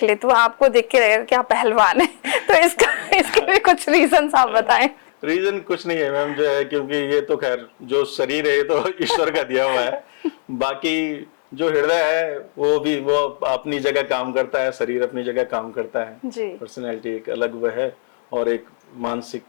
ले तो आपको देख के लगेगा कि आप पहलवान हैं। तो इसके भी कुछ रीजन आप बताएं। रीजन कुछ नहीं है मैम, जो है क्योंकि ये तो खैर जो शरीर है ये तो ईश्वर का दिया हुआ है, बाकी जो हृदय है वो अपनी जगह काम करता है, शरीर अपनी जगह काम करता है, पर्सनैलिटी एक अलग वो है, और एक मानसिक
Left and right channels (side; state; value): right; silent; digital silence